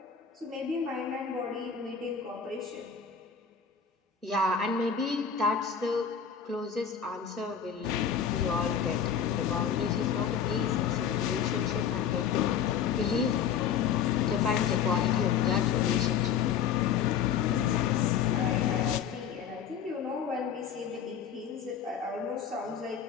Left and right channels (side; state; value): right; quieter; 7.6 dB